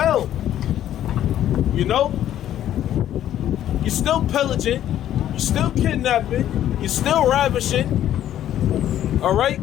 You know? You're still pillaging. You're still kidnapping. You're still ravishing. All right?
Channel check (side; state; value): right; quieter; 11.6 dB